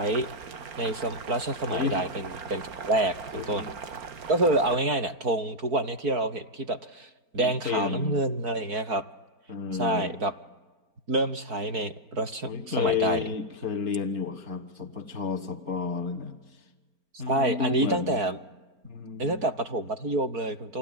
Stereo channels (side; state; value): left; late; 4.4 ms